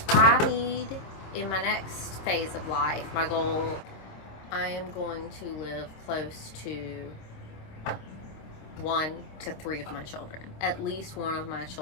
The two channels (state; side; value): late; right; 26 ms